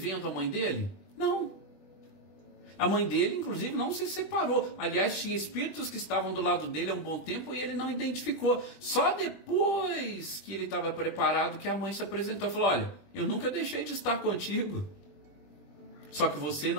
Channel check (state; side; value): late; right; 20 ms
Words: a mãe dele? Não. A mãe dele, inclusive, não se separou. Aliás, tinha espíritos que estavam do lado dele há um bom tempo e ele não identificou. Só depois que ele estava preparado que a mãe se apresentou e falou, olha, eu nunca deixei de estar contigo. Só que você